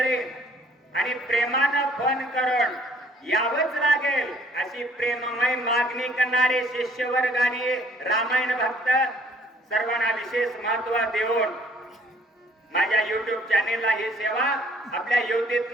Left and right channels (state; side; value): normal; both; correlation 0.60